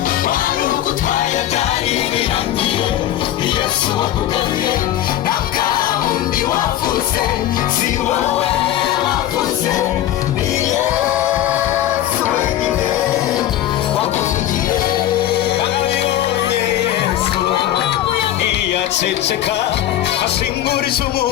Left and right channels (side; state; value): right; quieter; 12.5 dB